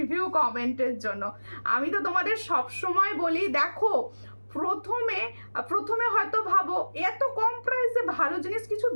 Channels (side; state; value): both; inverted; correlation -1.00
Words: কমেন্টের জন্য। আমি তো তোমাদের সব সময় বলি, দেখো প্রথমে হয়তো ভাবো এত কম প্রাইসে ভালো জিনিস কিছু